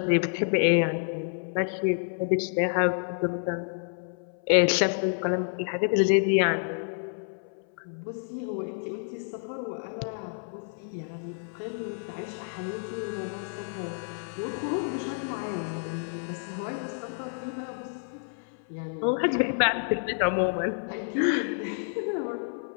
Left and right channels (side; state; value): right; silent; 58 dB below the other